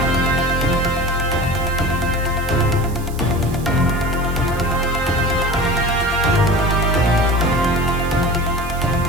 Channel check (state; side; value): noise; right; hiss, 18 dB below the sound